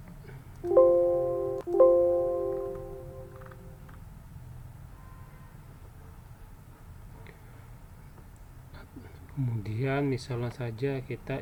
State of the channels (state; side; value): identical; both; correlation 1.00